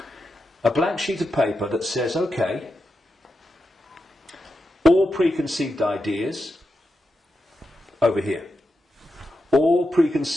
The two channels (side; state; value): both; normal; correlation 0.88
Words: A blank sheet of paper that says, okay, all preconceived ideas over here. All